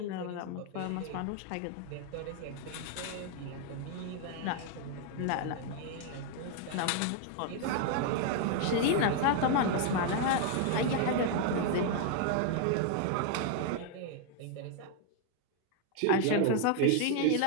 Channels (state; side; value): different; both; correlation 0.00